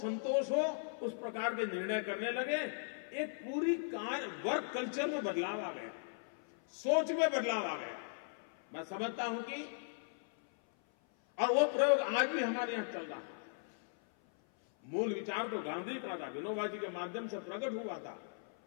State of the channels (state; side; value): silent; right; 52 dB below the other